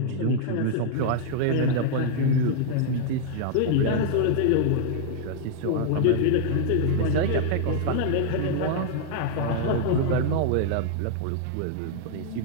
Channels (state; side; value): different; both; correlation -0.01